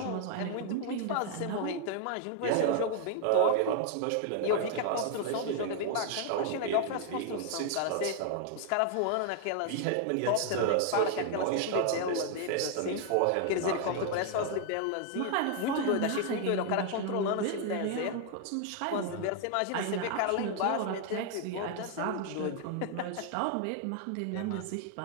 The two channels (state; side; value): different; both; correlation 0.00